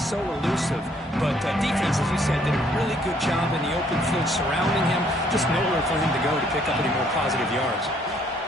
elusive. But defense, as you said, did a really good job in the open field surrounding him. Just nowhere for him to go to pick up any more positive yards.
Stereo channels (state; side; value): normal; both; correlation 0.65